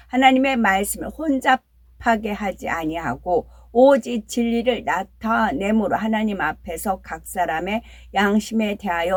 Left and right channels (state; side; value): identical; both; correlation 1.00